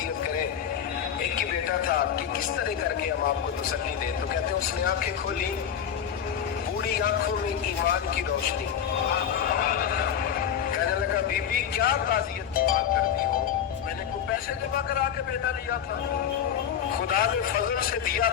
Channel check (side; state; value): right; quieter; 8.8 dB